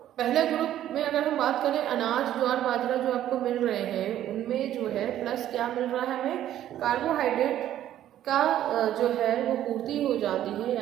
पहले ग्रुप में अगर हम बात करें अनाज, ज्वार, बाजरा जो आपको मिल रहे हैं, उनमें जो है प्लस क्या मिल रहा है, हमें कार्बोहाइड्रेट का जो है वो पूर्ति हो जाती है,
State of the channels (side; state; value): left; quieter; 12.0 dB